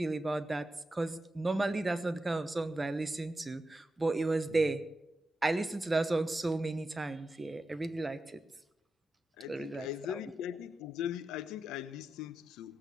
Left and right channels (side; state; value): both; normal; correlation 0.89